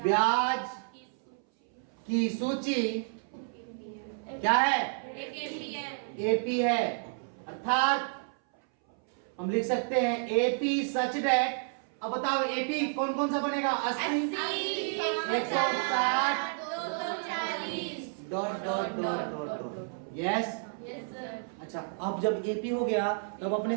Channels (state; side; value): silent; left; 57 dB below the other